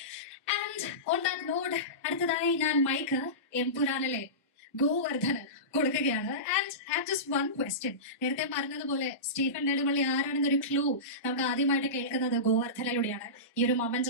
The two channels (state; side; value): normal; both; correlation -0.20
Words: And on that note, അടുത്തതായി ഞാൻ മൈക്ക് എംപുരാനിലെ ഗോവർദ്ധന് കൊടുക്കുകയാണ്. And have just one question. നേരത്തെ പറഞ്ഞതുപോലെ സ്റ്റീഫൻ നെടുമ്പള്ളി ആരാണെന്നൊരു ക്ലൂ നമുക്ക് ആദ്യമായിട്ട് കേൾക്കുന്നത് ഗോവർദ്ധനിലൂടെയാണ്. ഈ ഒരു